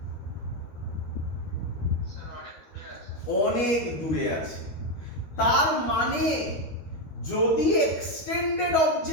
অনেক দূরে আছে। তার মানে যদি এক্সটেন্ডেড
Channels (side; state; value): right; late; 13 ms